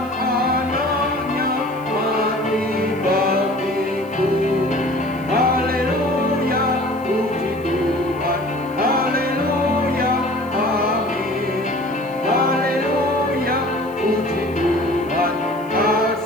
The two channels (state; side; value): noise; left; hiss, 27 dB below the sound